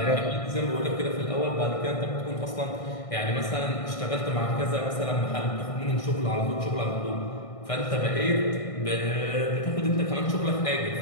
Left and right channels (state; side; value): late; right; 1.6 ms